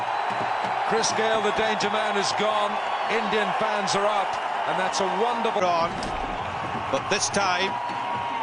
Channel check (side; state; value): both; identical; correlation 1.00